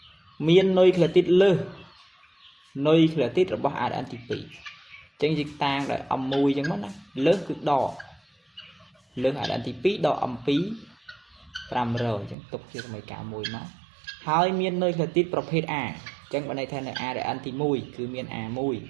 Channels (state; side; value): drops out; left; at 12.4 s